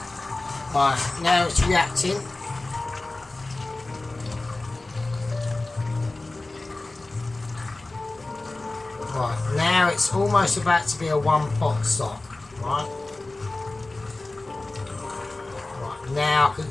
Right, now it's reacting. Right, now it's almost about to be a one pot stock, right? Right, now I can,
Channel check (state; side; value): quieter; right; 3.0 dB